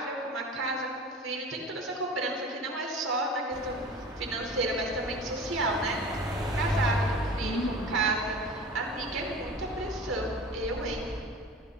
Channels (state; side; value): normal; both; correlation 0.38